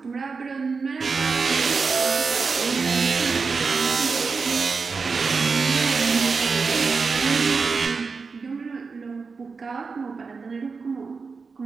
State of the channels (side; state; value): left; quieter; 4.8 dB